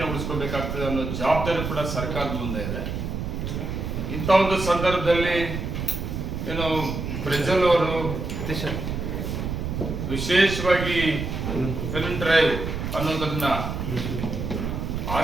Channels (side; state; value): right; noise; rumble, 4 dB below the sound